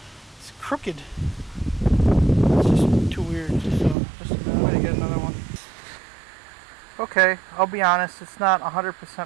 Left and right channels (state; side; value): drops out; left; at 4.0 s